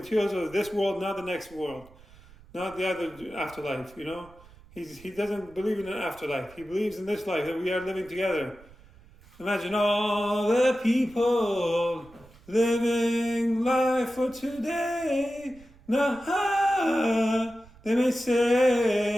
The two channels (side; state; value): right; noise; rumble, 24 dB below the sound